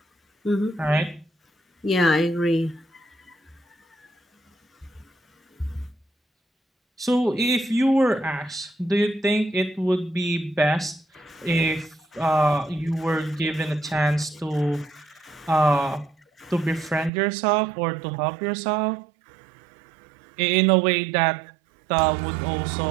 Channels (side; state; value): left; drops out; at 17.1 s